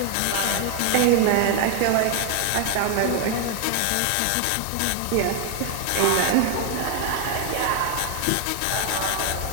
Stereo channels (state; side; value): different; both; correlation 0.00